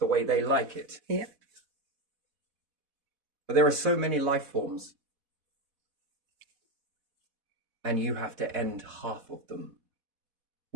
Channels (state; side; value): late; left; 4.1 ms